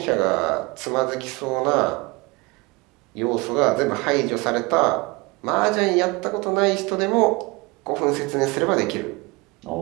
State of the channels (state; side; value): quieter; left; 25.2 dB